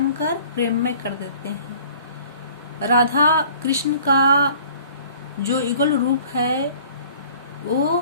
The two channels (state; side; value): inverted; both; correlation -0.51